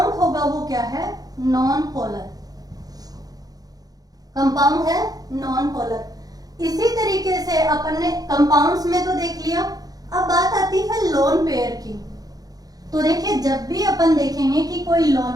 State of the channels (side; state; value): left; late; 0.18 ms